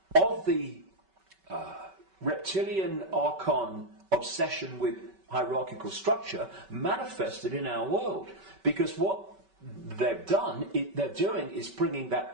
the reptilian archon obsession with hierarchical structure manifested in our world. Because what they're doing is bringing that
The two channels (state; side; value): late; left; 5.2 ms